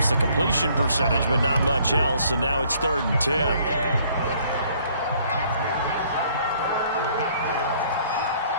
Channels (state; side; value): inverted; both; correlation -0.61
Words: the completion percentage, but not much else. And now it's 3rd and 10.